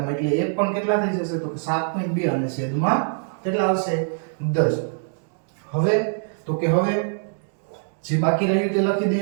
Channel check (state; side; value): silent; left; digital silence